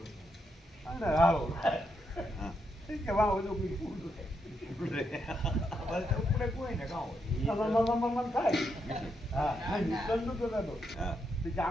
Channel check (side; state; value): both; normal; correlation 0.80